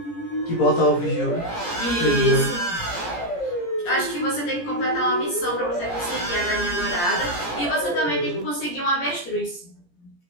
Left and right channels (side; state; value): right; late; 17 ms